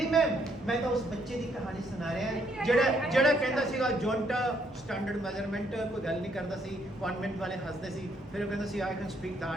ma'am, मैं तो उस बच्चे की कहानी सुना रहा है ਜਿਹੜਾ ਕਹਿੰਦਾ ਸੀਗਾ ਜੌਂਟਾ ਸਟੈਂਡਰਡ ਮੈਜ਼ਰਮੈਂਟ ਕੋਈ ਗੱਲ ਨਹੀਂ ਕਰਦਾ ਸੀ, ਕਨਵੈਂਟ ਵਾਲੇ ਹੱਸਦੇ ਸੀ, ਫਿਰ ਉਹ ਕਹਿੰਦਾ ਸੀ I can speak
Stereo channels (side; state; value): both; normal; correlation 0.71